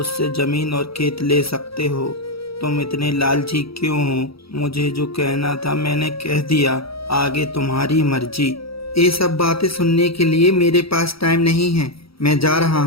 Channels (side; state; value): right; late; 0.76 ms